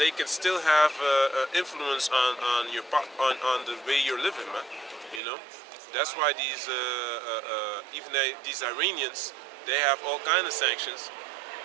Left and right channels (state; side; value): drops out; left; at 5.2 s